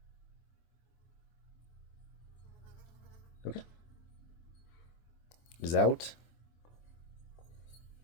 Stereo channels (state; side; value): late; right; 24 ms